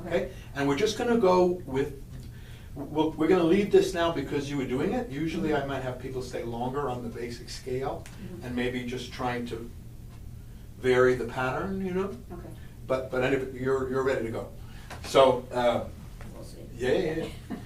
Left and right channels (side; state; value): both; identical; correlation 1.00